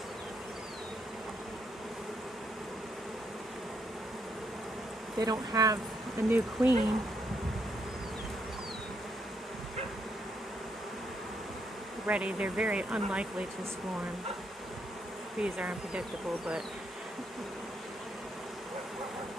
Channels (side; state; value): both; normal; correlation 0.75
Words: They don't have a new queen ready. They're very unlikely to swarm. Bees are unpredictable, but